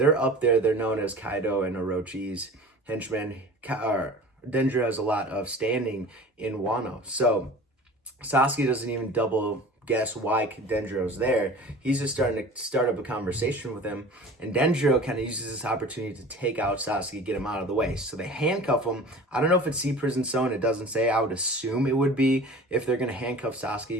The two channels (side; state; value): both; normal; correlation 0.40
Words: up there. They're known as Kaido and Orochi's henchmen. Denjiro has a lot of standing in Wano. So Sasuke doesn't even double guess why Denjiro's there. He's just starting to start up a conversation with him, and Denjiro kind of uses this opportunity to take out Sasuke, get him out of the way. So they handcuff him. I don't know if it's Sea Prison Stone. It doesn't say. I would assume it would be. If they're going to handcuff